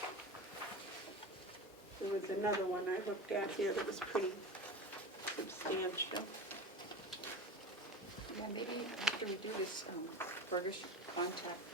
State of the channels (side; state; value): both; normal; correlation 0.29